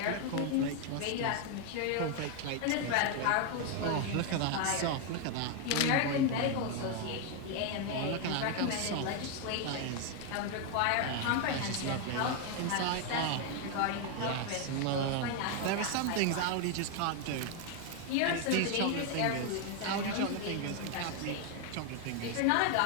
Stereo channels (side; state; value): both; different; correlation 0.01